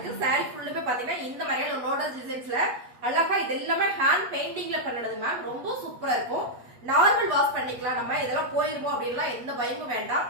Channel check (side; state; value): left; late; 8.2 ms